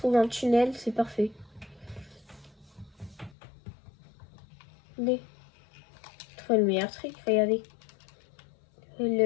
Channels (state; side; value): drops out; right; at 3.4 s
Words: un tunnel, c'est parfait. Allez. Je trouve le meilleur truc, regardez.